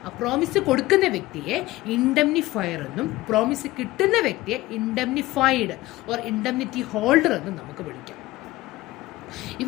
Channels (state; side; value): quieter; right; 18.1 dB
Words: ആ promise കൊടുക്കുന്ന വ്യക്തിയെ ഇൻഡംനിഫയർ എന്നും promise കിട്ടുന്ന വ്യക്തിയെ ഇൻഡംനിഫൈഡ് or indemnity holder എന്നും നമുക്ക് വിളിക്കാം.